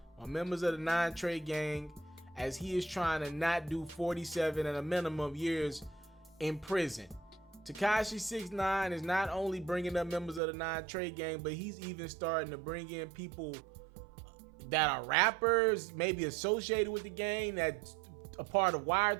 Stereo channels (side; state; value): left; drops out; at 10.4 s